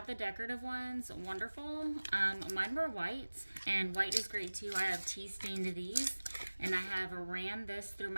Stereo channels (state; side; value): inverted; both; correlation -1.00